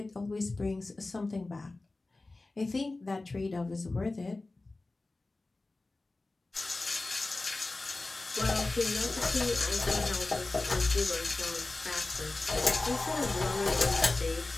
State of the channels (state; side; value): quieter; right; 3.2 dB